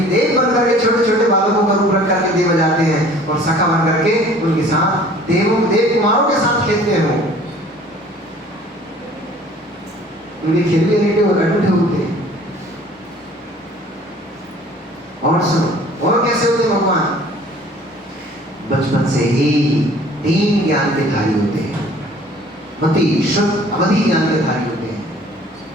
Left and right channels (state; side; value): normal; both; correlation 0.51